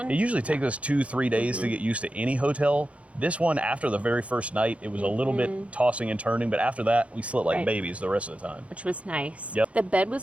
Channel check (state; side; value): late; left; 0.064 ms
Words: usually takes us 2-3 days to get used to any hotel. This one, after the very first night, it was a little bit tossing and turning, but after that, we slept like babies the rest of the time. Which was nice. Yep. The bed